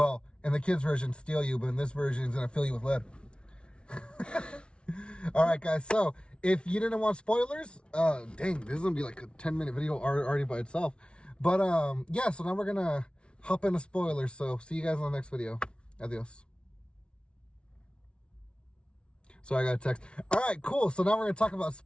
in the kids' version, steal you, but in this version, it's going to fill you with lead. All right, guys. So if you didn't want spoilers, dang, this is going to be like a 10-minute video already by itself. But yeah, so now we're going to hop into spoilers. So see you guys in the next video. Adios. So I got a text. All right, cool. So now we're going to talk about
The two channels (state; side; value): late; right; 0.058 ms